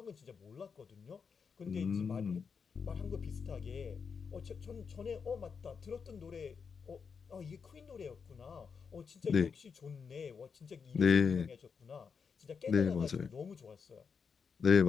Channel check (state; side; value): quieter; right; 5.9 dB